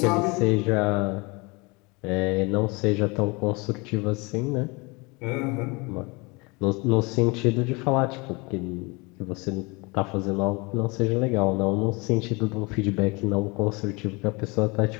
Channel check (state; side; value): quieter; right; 27.2 dB